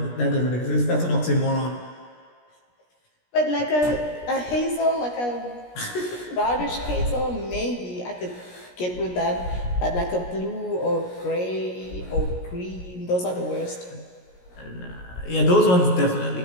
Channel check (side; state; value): right; late; 17 ms